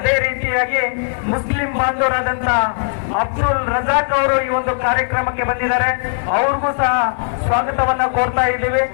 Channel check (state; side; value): silent; right; 67 dB below the other